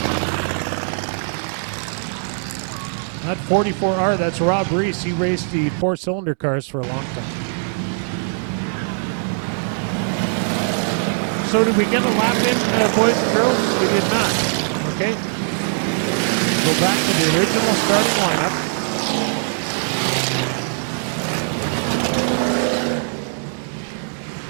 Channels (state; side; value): silent; left; digital silence